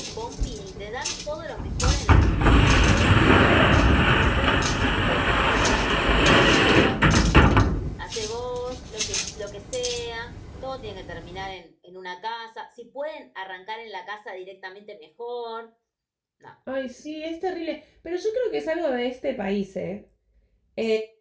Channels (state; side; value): identical; both; correlation 1.00